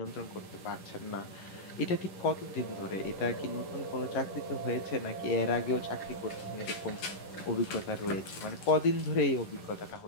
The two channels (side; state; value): right; late; 11 ms